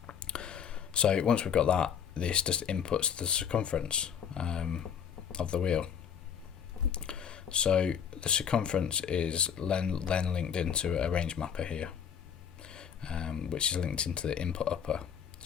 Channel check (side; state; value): right; quieter; 7.9 dB